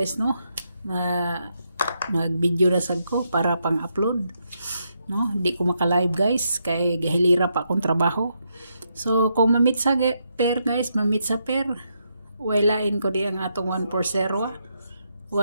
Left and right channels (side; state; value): both; inverted; correlation -0.80